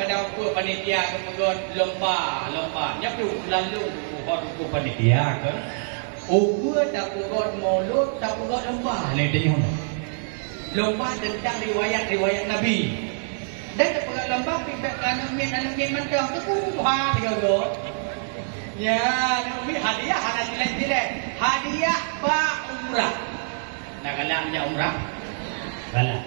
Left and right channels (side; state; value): left; silent; digital silence